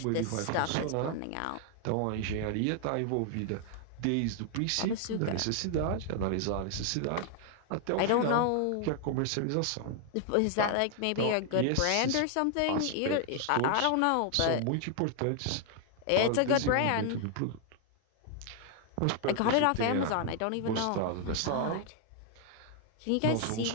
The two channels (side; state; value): both; different; correlation 0.00